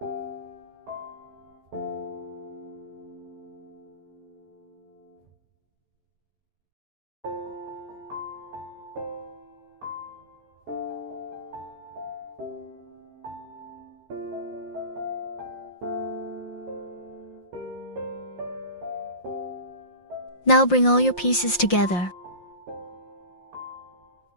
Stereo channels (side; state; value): right; late; 5.7 ms